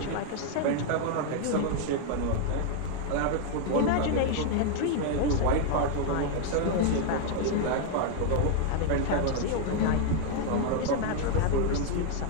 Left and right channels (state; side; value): different; both; correlation 0.00